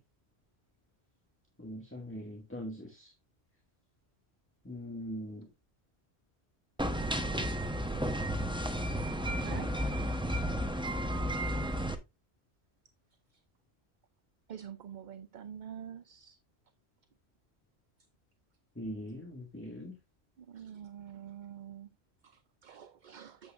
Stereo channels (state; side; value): normal; both; correlation 0.60